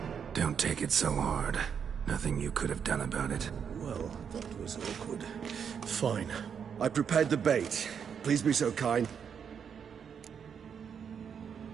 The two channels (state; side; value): quieter; left; 7.3 dB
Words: Don't take it so hard. Nothing you could have done about it. Well, that was awkward. Fine. I prepared the bait. Please be so kind.